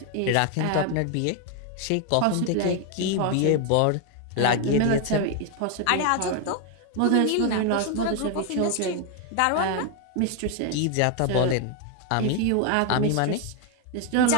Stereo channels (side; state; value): both; different; correlation 0.01